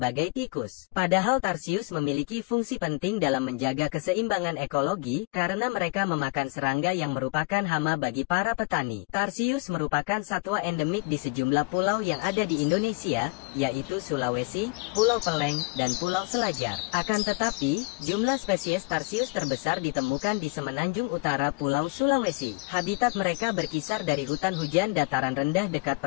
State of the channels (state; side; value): quieter; right; 28.6 dB